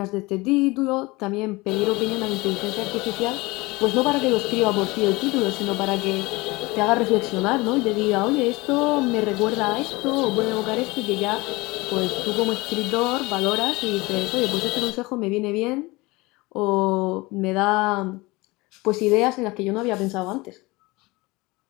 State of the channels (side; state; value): right; quieter; 22.8 dB